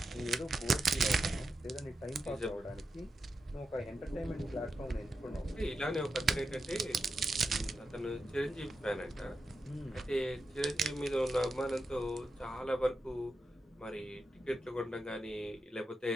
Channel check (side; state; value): both; normal; correlation 0.88